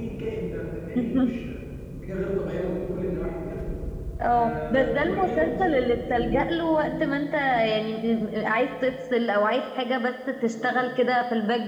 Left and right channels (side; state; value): both; identical; correlation 1.00